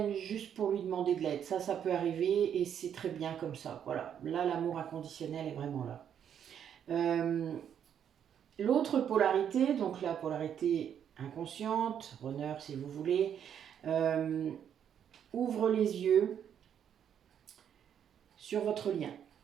juste pour lui demander de l'aide. Ça peut arriver et c'est très bien comme ça. Voilà, là l'amour inconditionnel est vraiment là. L'autre polarité, donc la polarité inconsciente, runner si vous voulez, ouvre les yeux sur votre lien.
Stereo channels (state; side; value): quieter; left; 8.9 dB